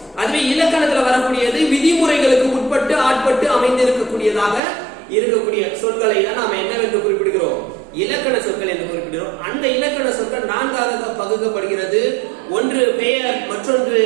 அதுவே இலக்கணத்துல வரக்கூடியது விதிமுறைகளுக்கு உட்பட்டு ஆட்பட்டு அமைந்திருக்கக்கூடியதாக இருக்கக்கூடிய சொற்களை தான் நாம என்னவென்று குறிப்பிடுகிறோம்? இலக்கண சொற்கள் என்று குறிப்பிடுகிறோம். அந்த இலக்கண சொற்கள் நான்காக பகுக்கப்படுகிறது. ஒன்று பெயர், மற்றொன்று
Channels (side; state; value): left; drops out; at 4.6 s